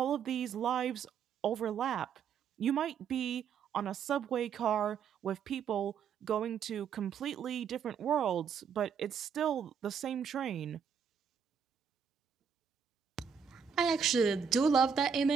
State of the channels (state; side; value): quieter; left; 7.0 dB